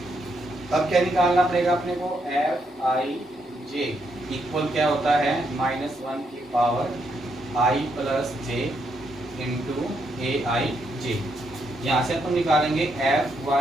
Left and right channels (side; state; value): both; normal; correlation 0.78